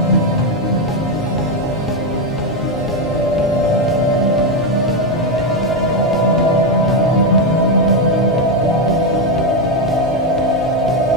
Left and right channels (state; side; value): normal; both; correlation 0.06